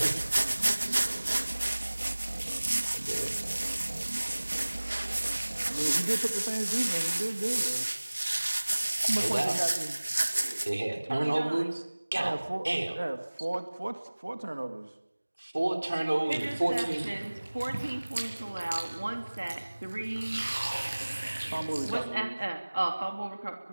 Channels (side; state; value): both; inverted; correlation -1.00